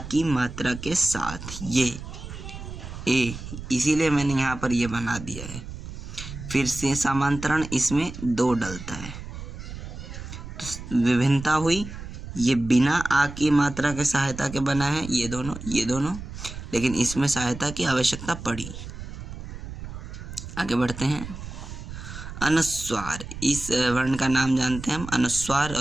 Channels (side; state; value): right; noise; rumble, 11 dB below the sound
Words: की मात्रा के साथ, ये ए, इसीलिए मैंने यहाँ पर ये बना दिया है। फिर से समांतरण, इसमें 2 डलता है, तो विभिन्नता हुई। ये बिना आ की मात्रा के सहायता के बना है, ये दोनों, लेकिन इसमें सहायता की आवश्यकता पड़ी। आगे बढ़ते हैं, अनुस्वार, इस वर्ण का नाम जानते हैं हम अनुस्वार,